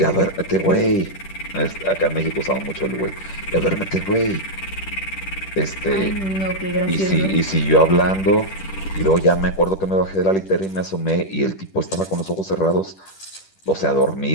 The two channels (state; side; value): late; right; 10 ms